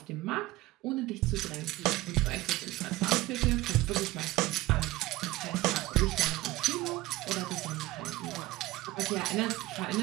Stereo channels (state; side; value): quieter; left; 18.5 dB